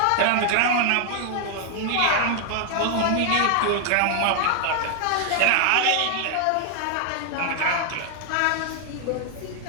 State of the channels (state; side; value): different; both; correlation 0.00